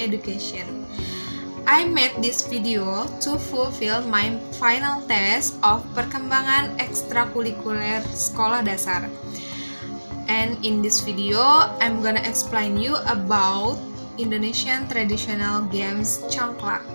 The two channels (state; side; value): inverted; both; correlation -1.00